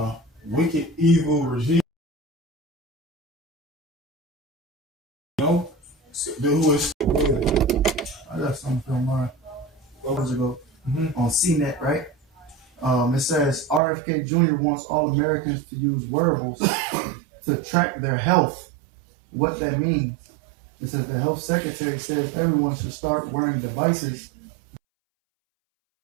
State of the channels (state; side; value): drops out; left; at 13.8 s